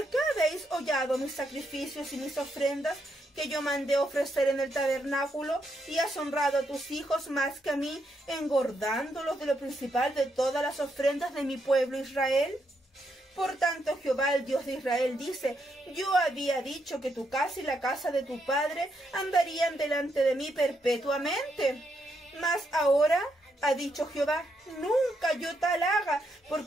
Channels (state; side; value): normal; both; correlation 0.79